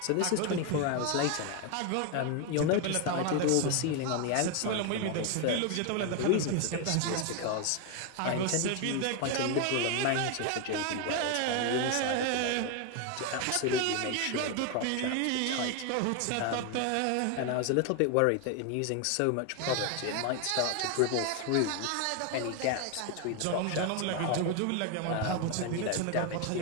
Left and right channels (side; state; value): both; different; correlation 0.01